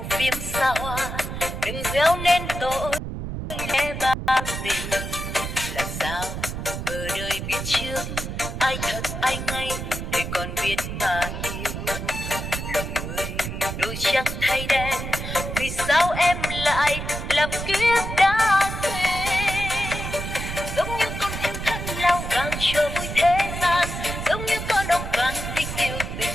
phim xa hoa, đừng gieo nên tội lẽ ba tình. Làm sao ở đời biết trước ai thật ai ngay, để còn biết mà yêu. Lòng người đôi trắng thay đen, vì sao em lại làm kiếp đã quên. Giống như con thiên thân lao vàng cho vui thế gian, giống như con ong vàng thích yêu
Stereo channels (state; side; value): noise; right; rumble, 6 dB below the sound